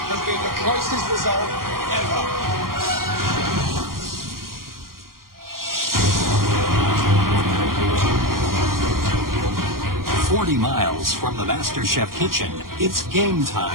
has been the closest result ever. 40 miles from the MasterChef kitchen, it's game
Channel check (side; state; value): left; late; 0.92 ms